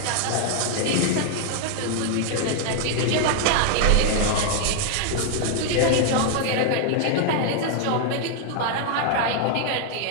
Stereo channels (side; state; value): both; different; correlation 0.00